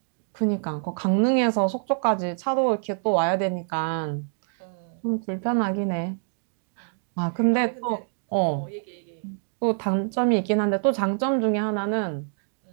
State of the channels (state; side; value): silent; left; digital silence